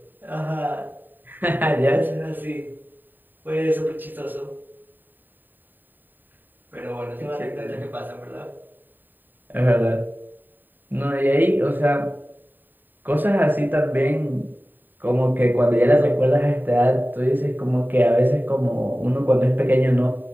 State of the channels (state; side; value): late; left; 0.091 ms